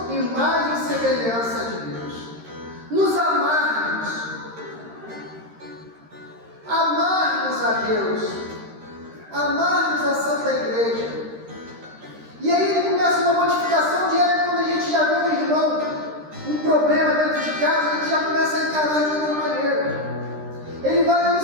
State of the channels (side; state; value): left; late; 13 ms